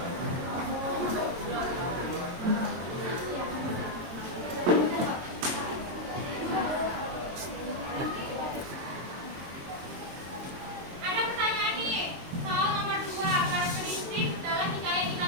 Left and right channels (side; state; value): left; late; 22 ms